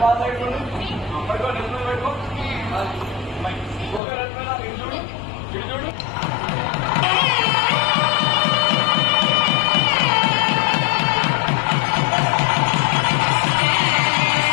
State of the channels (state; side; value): drops out; right; at 4.0 s